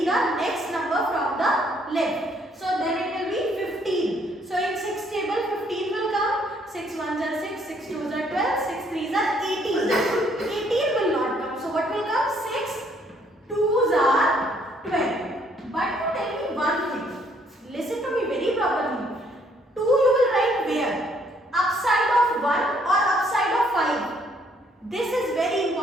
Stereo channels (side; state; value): both; normal; correlation 0.66